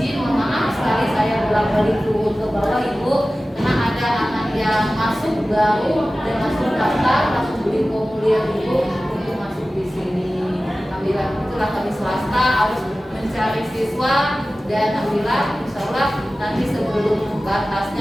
mohon maaf sekali saya bolak-balik turun ke bawah Ibu karena ada anak yang masuk baru dan masuk daftar langsung beli formulir Ibu untuk masuk di sini. Alhamdulillah itulah kami swasta harus mencari siswa dan alhamdulillah insya Allah nanti sebelum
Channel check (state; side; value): normal; both; correlation 0.96